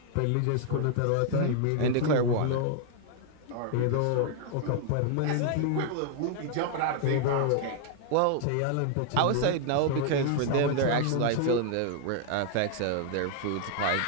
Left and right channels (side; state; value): both; different; correlation 0.00